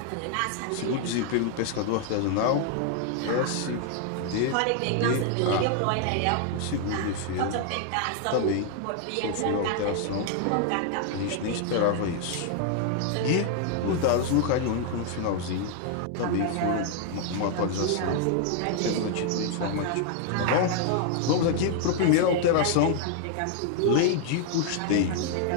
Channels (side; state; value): both; different; correlation 0.00